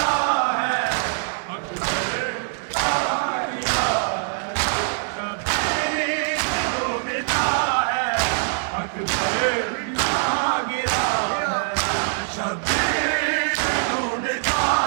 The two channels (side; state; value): left; silent; digital silence